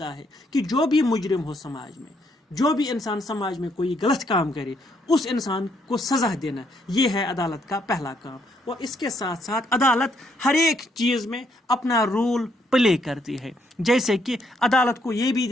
ہے کہ جو بھی مجرم ہو سماج میں، جو بھی انسان سماج میں کوئی غلط کام کرے اس انسان کو سزا دینا، یہ ہے عدالت کا پہلا کام. اور اس کے ساتھ ساتھ عدالت ہر ایک چیز میں اپنا رول پلے کرتی ہے. جیسے کہ عدالت کو یہ بھی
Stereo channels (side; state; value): both; normal; correlation 0.72